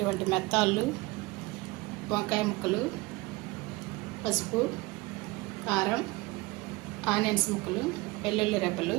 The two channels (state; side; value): quieter; left; 22.5 dB